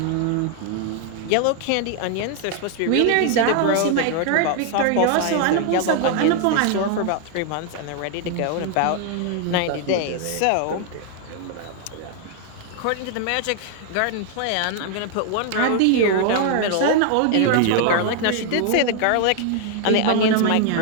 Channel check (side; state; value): both; different; correlation 0.00